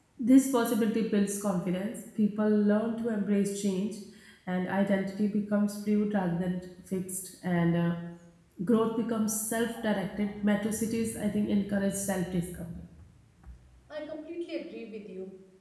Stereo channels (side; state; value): both; identical; correlation 1.00